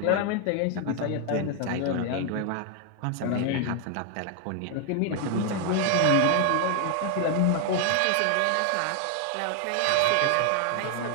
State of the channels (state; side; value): different; both; correlation 0.00